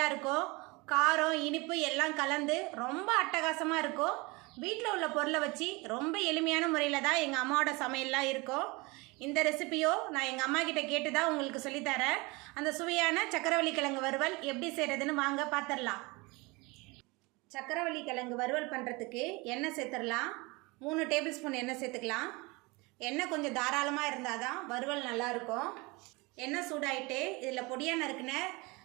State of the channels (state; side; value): quieter; left; 25.4 dB